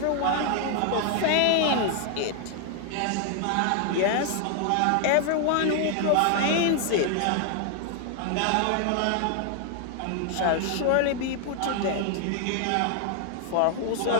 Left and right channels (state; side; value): different; both; correlation 0.00